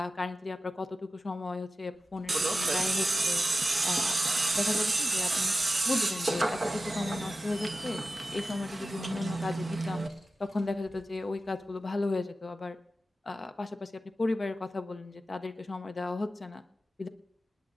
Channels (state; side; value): normal; both; correlation 0.93